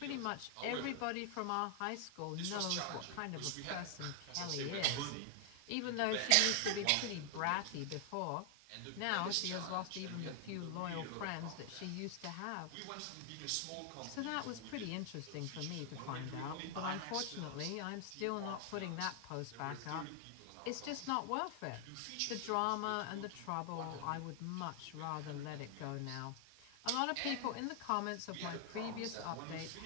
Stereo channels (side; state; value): both; different; correlation 0.00